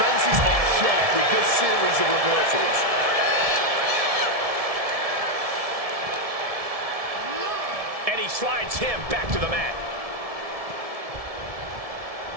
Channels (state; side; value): late; left; 1.7 ms